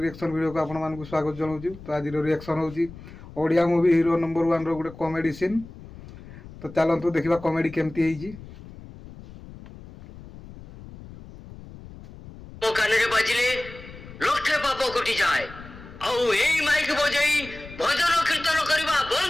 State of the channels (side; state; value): left; noise; rumble, 17 dB below the sound